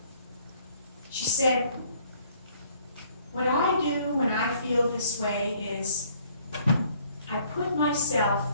She said, "What I do when I feel this way is I put myself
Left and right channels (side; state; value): both; inverted; correlation -0.61